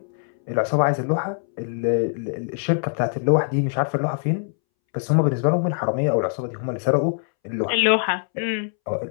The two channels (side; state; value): right; silent; 63 dB below the other